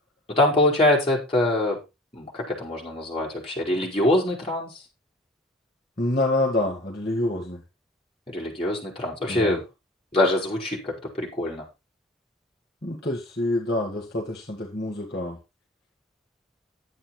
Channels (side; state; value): both; normal; correlation 0.41